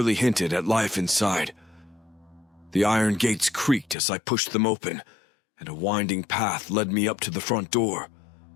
hinted at life inside. The iron gates creaked as I pushed them open, and a winding path led me up to the front door.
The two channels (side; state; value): right; drops out; at 4.0 s